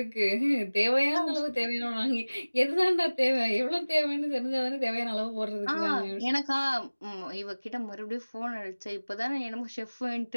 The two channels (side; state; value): both; inverted; correlation -1.00